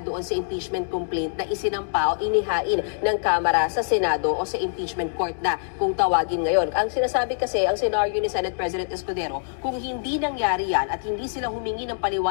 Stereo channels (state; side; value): silent; right; digital silence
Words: doon sa impeachment complaint na isinampa o inihain ng Kamara sa Senado o sa impeachment court na kung tawagin ngayon. Ang sinasabi kasi, ang senaryo ni Senate President Escudero, kung hindi nangyari yan at hindi sila humingi ng